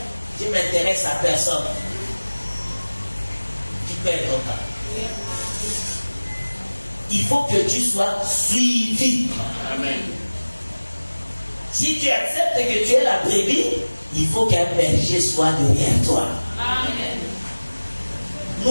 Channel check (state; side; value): inverted; both; correlation -1.00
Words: je m'intéresse à personne. Tu perds ton temps. il faut que tu sois suivi. Amen. Si tu acceptes que tu es la brebis, il faut qu'un berger soit derrière toi. Amen.